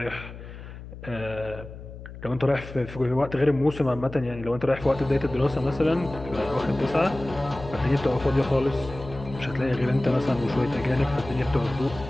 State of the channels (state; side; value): noise; left; hum, 13 dB below the sound